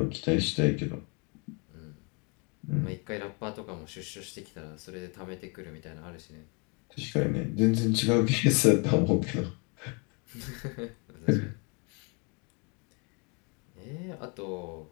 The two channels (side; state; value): right; quieter; 33.7 dB